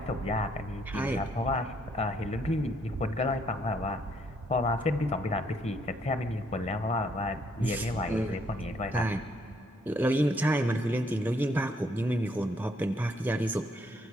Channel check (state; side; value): normal; both; correlation 0.69